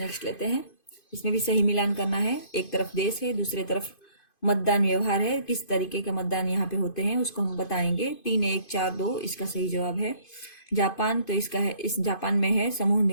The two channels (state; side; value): late; right; 2.5 ms